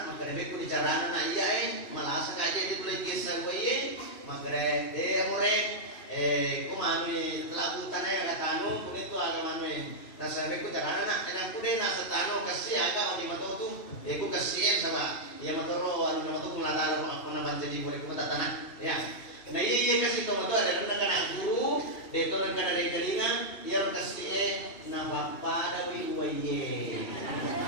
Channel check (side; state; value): right; late; 2.7 ms